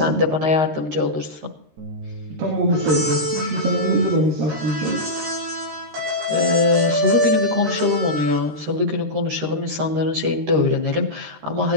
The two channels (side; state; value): left; late; 13 ms